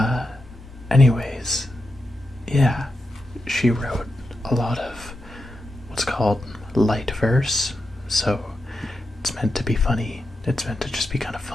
Anyways, yeah, she wrote a lot of what's called light verse, so it's meant to be funny. It's meant to just be kind of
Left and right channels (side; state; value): both; normal; correlation 0.88